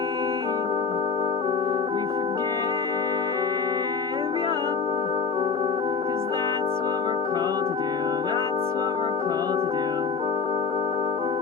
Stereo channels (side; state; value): right; quieter; 5.3 dB